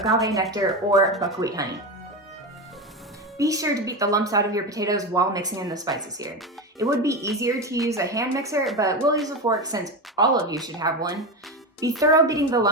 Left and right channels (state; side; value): normal; both; correlation 0.18